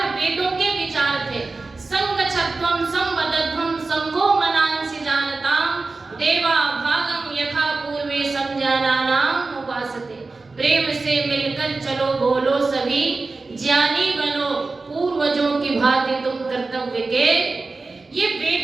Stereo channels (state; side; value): quieter; left; 3.7 dB